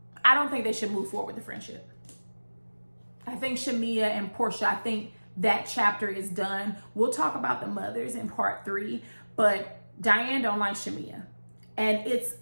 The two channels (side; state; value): both; inverted; correlation -1.00